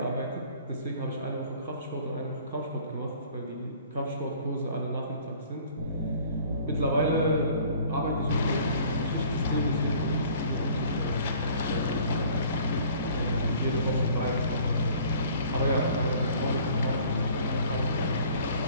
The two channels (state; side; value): inverted; both; correlation -0.52